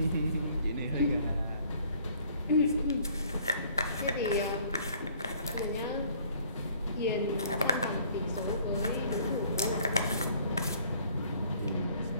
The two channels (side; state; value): both; inverted; correlation -0.58